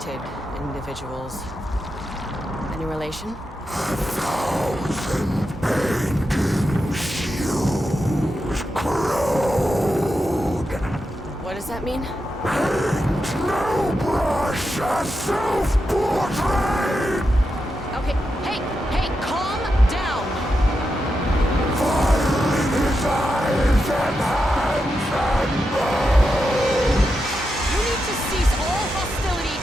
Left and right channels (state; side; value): normal; both; correlation 0.87